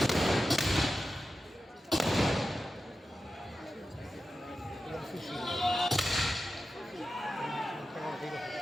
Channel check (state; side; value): normal; both; correlation 0.92